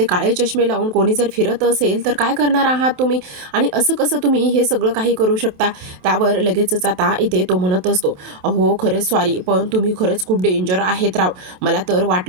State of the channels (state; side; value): late; left; 27 ms